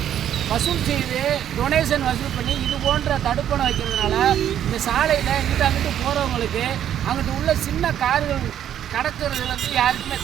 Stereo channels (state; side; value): quieter; left; 10.3 dB